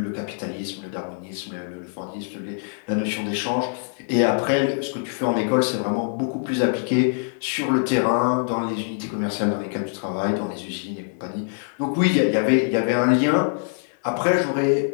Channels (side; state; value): right; silent; 63 dB below the other